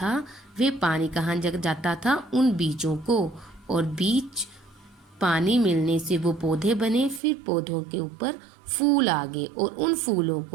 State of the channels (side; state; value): left; drops out; at 7.2 s